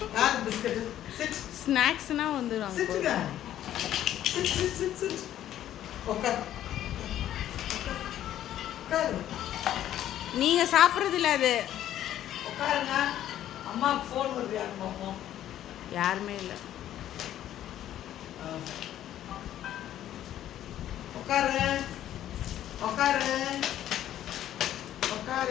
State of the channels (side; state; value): right; quieter; 11.9 dB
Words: யார் பிஸ்கட்? சிட். ஸ்நாக்ஸ்னா வந்துரும். சிட்டுங்க. Sit sit sit sit. உட்கார். உட்கார். நீங்க சாப்பிடுறது இல்ல அது. உட்காருங்க. அம்மாக்கு ஃபோன் வருது யாரு பாப்போம். யாருமே இல்ல. உட்காரு. உட்காரு.